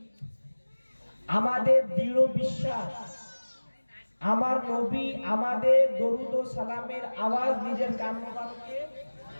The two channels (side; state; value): both; inverted; correlation -1.00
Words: আমাদের দৃঢ় বিশ্বাস আমার নবী আমাদের দরুদ ও সালামের আওয়াজ নিজের কান মোবারকে,